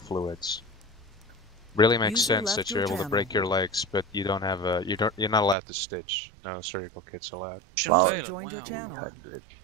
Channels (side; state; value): left; drops out; at 5.6 s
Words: Really makes User sense left that your you're able to channel. break your legs, but you don't have a you're not allowed to stitch. No surgical kits allowed. User joined your channel.